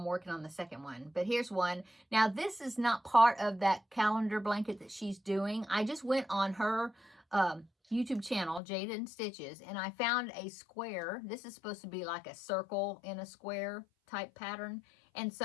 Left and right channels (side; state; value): right; drops out; at 8.6 s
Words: working on the second one. But here's one. Now, this is not part of that calendar blanket that she's doing. I just went on her YouTube channel, Jada and Stitches, and I found a square. This is supposed to be like a circle in a square type pattern. And